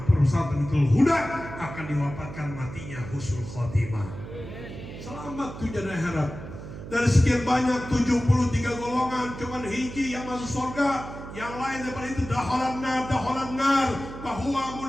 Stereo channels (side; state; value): right; noise; hum, 11 dB below the sound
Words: perusahaan Tamitul Huda akan diwafatkan matinya husnul khotimah. Selamat tujuan akhirat. Dari sekian banyak 73 golongan, cuman hiji yang masuk surga. Yang lain daripada itu daholan nar, bahwa